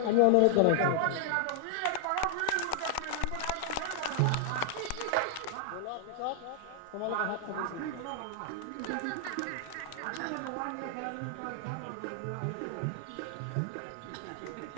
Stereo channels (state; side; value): different; both; correlation 0.00